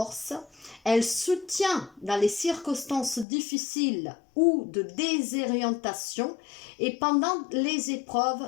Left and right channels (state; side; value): drops out; right; at 3.2 s